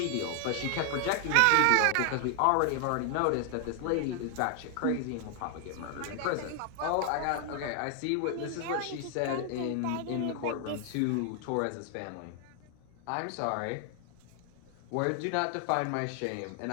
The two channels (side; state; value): both; different; correlation 0.00